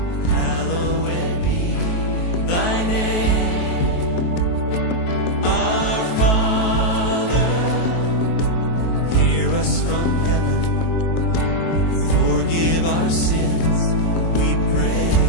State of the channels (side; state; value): right; late; 23 ms